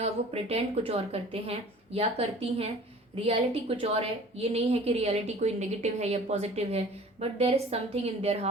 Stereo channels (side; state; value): both; normal; correlation 0.46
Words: वो प्रिटेंड कुछ और करते हैं या करती हैं। रियलिटी कुछ और है, ये नहीं है कि रियलिटी कोई नेगेटिव है या पॉजिटिव है, but there is something in their